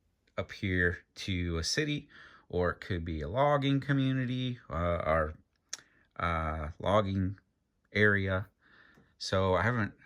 here to a city, or it could be a logging community or logging area. So I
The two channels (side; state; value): both; identical; correlation 1.00